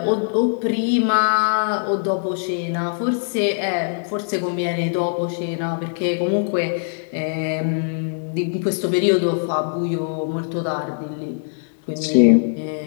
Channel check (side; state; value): right; silent; digital silence